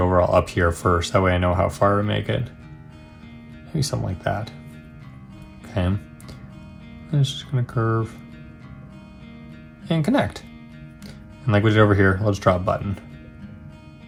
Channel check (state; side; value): identical; both; correlation 1.00